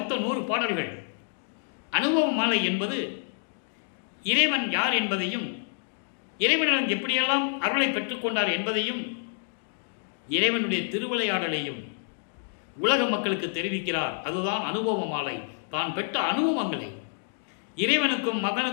100 பாடல்கள். அனுபவ மாலை என்பது இறைவன் யார் என்பதையும், இறைவனிடம் எப்படியெல்லாம் அருளை பெற்றுக்கொண்டார் என்பதையும், இறைவனுடைய திருவிளையாடலையும் உலக மக்களுக்கு தெரிவிக்கிறார். அதுதான் அனுபவ மாலை. தான் பெற்ற அனுபவங்களை, இறைவனுக்கும்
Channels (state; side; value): silent; right; digital silence